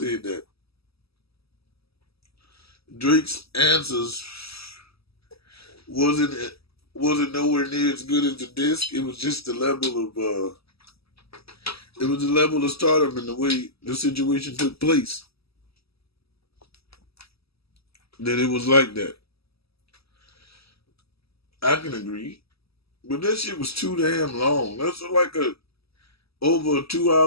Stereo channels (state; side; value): late; right; 0.77 ms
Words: that Drake's answers wasn't wasn't nowhere near as good as the disc. It was just the level of it was the level of stardom and the way the situation took place that it was like that. I can agree, but that shit was too damn long. That's like a over a 2